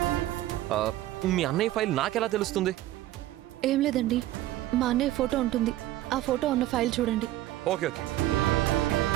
మీ అన్నయ్య ఫైల్ నాకెలా తెలుస్తుంది? ఏం లేదండి, మా అన్నయ్య ఫోటో ఉంటుంది, ఆ ఫోటో ఉన్న ఫైల్ చూడండి. Okay okay.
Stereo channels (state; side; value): quieter; left; 14.9 dB